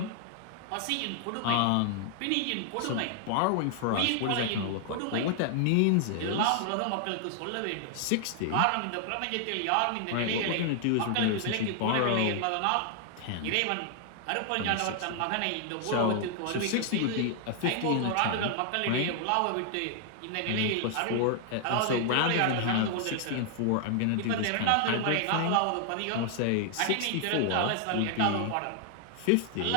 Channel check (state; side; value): different; both; correlation 0.00